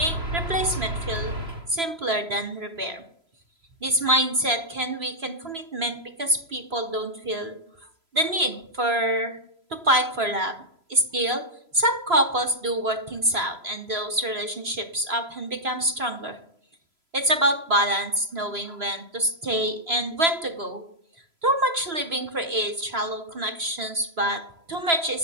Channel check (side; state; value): left; late; 3.0 ms